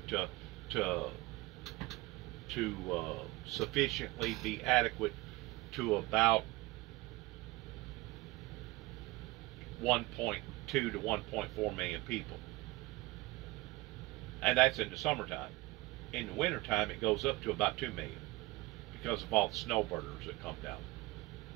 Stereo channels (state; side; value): quieter; left; 21.0 dB